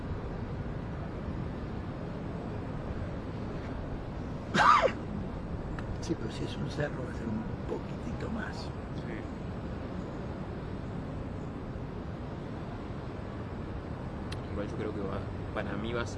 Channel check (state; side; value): identical; both; correlation 1.00